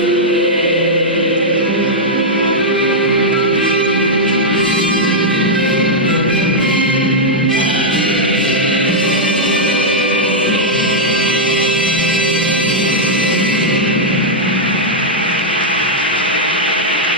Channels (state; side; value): normal; both; correlation -0.05